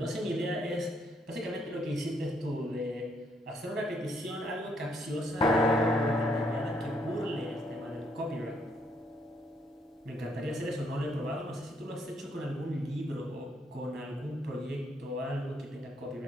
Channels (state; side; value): normal; both; correlation 0.72